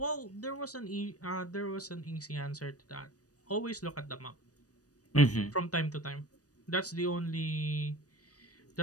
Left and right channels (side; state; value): right; late; 0.67 ms